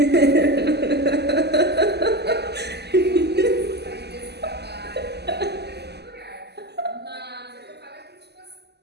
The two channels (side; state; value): left; late; 0.49 ms